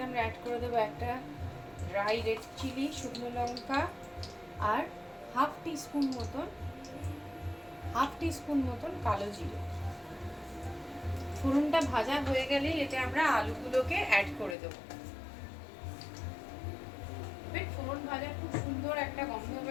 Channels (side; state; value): right; drops out; at 14.6 s